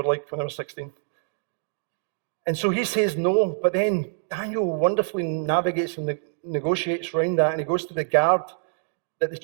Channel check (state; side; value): silent; left; digital silence